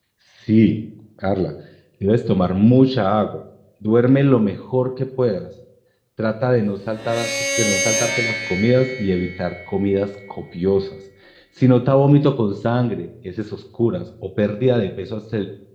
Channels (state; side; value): identical; both; correlation 1.00